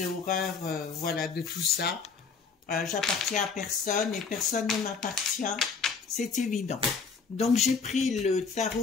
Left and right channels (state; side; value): quieter; right; 5.3 dB